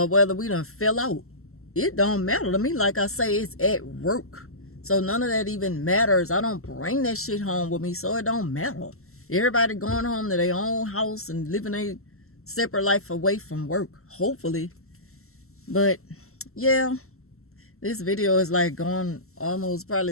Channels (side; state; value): right; late; 0.63 ms